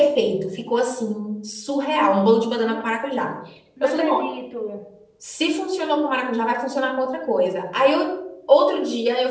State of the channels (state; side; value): identical; both; correlation 1.00